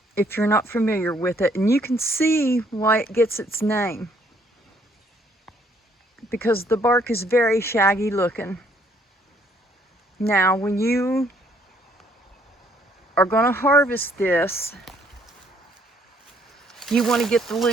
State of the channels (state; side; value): normal; both; correlation 0.66